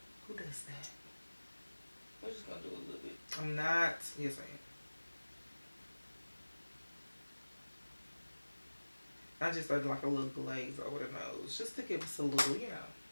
Who does that? We're just gonna do a little bit. I'm not. Yes, I am. I just did like a little glaze over the nose, just to give us a little, you know,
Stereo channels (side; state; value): both; inverted; correlation -1.00